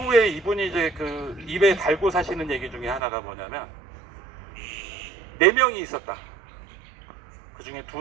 이분이 이제 입에 달고 사시는 얘기 중에 하나가 뭐냐면, 4명이 있었다. 그 중에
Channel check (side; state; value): left; drops out; at 3.0 s